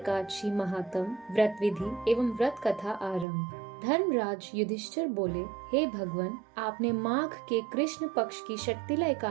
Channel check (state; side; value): drops out; left; at 3.2 s